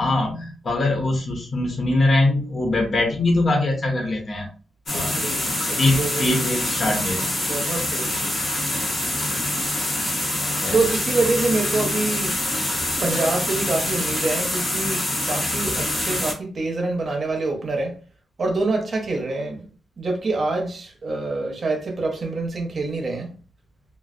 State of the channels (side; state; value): both; normal; correlation 0.85